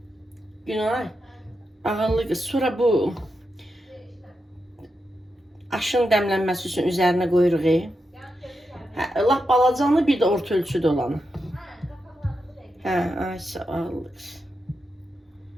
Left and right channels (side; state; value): both; normal; correlation 0.87